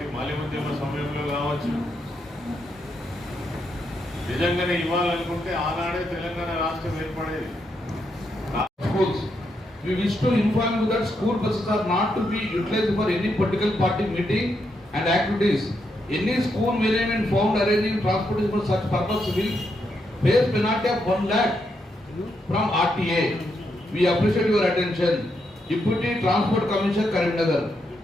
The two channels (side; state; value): both; normal; correlation 0.81